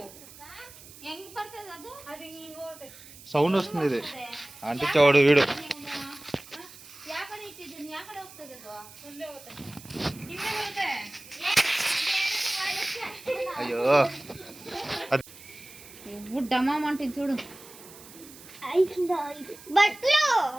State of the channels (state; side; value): noise; right; hiss, 19 dB below the sound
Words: ಸೌಂಡ್ ವస్తుంది. ಆಂಟಿ ಚೌಡು వీడు. అయ్యో ಡಮ ಮಾಡ್ತೀನಿ చూడు.